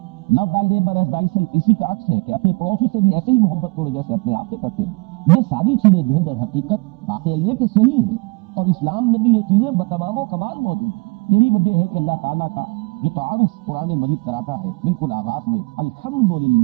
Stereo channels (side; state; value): left; quieter; 28.1 dB